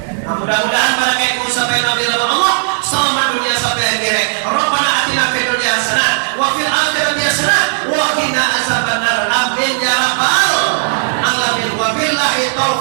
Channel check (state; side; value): silent; left; digital silence